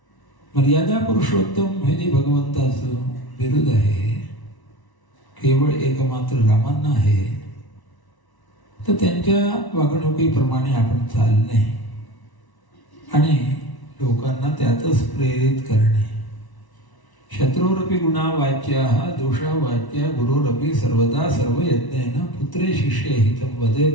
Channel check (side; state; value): right; late; 1.1 ms